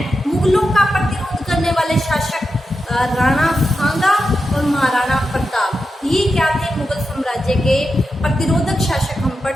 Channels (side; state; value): both; normal; correlation 0.89